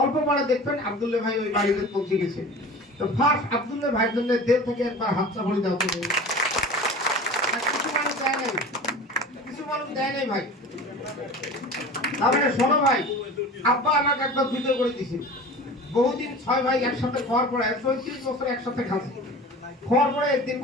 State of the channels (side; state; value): both; normal; correlation 0.37